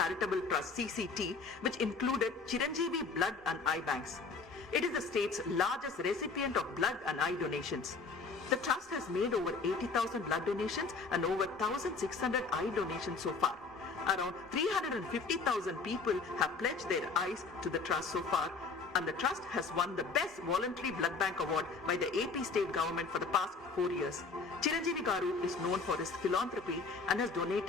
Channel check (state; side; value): quieter; right; 4.6 dB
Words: Trust (CCT), which included Chiranjeevi Blood and Eye Banks. It is the state's largest recipient of blood and eye donations. The trust has made over 80,000 blood donations and over 1,600 eye donations so far. Around 350,000 people have pledged their eyes to the trust so far, and the trust has won the Best Voluntary Blood Bank Award by the AP state government for the past 4 years. Chiranjeevi Garu is known for his philanthropy and has